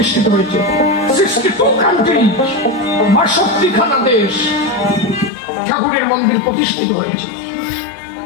হয়েছে। 62 কান্ট্রি, 62খানা দেশ ঠাকুরের মন্দির প্রতিষ্ঠিত হয়েছে।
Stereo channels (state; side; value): drops out; right; at 5.3 s